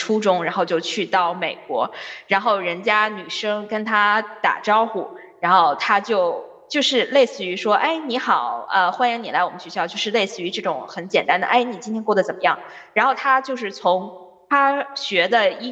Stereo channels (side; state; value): both; identical; correlation 1.00